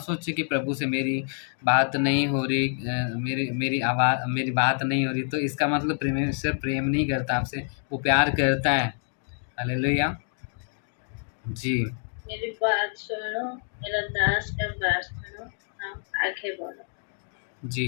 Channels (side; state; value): right; silent; 60 dB below the other